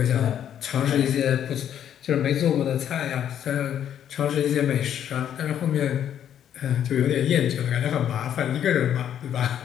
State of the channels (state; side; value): quieter; right; 9.8 dB